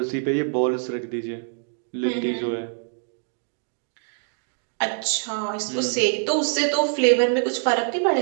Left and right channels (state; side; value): silent; left; digital silence